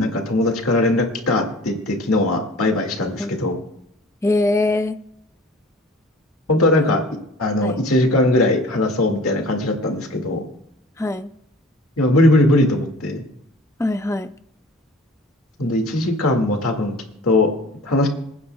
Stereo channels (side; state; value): both; normal; correlation 0.45